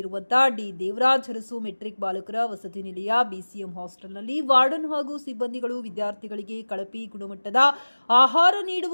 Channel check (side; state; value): both; inverted; correlation -1.00